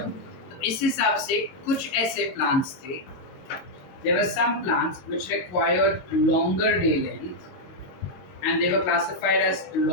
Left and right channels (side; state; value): right; late; 22 ms